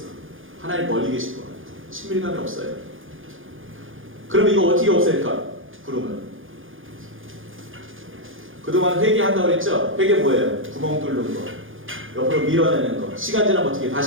하나님 멀리 계신 것 같아. 친밀감이 없어요. 그럼 이거 어떻게 없앨까? 구름을. 그동안 회개한다고 그랬죠? 회개 뭐예요? 구멍 뚫는 거. 옆으로 밀어내는 거. 시간 지나면 어떻게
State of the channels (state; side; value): late; left; 0.58 ms